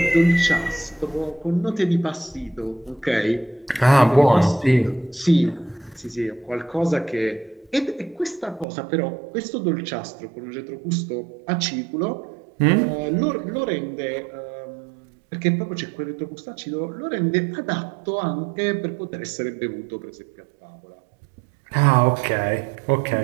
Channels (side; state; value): left; drops out; at 8.7 s